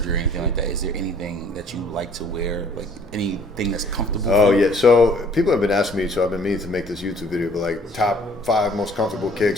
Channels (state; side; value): normal; both; correlation 0.57